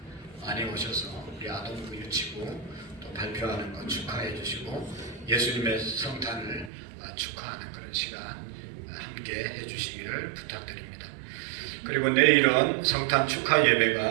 많이 오셔서 우리 아동부 유치부 또 발표하는 거 축하해 주시고 예수님의 성탄을 축하하는 그런 시간 함께 해주시기를 부탁드립니다. 그리고 내일은 성탄 축하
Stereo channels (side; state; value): left; drops out; at 6.7 s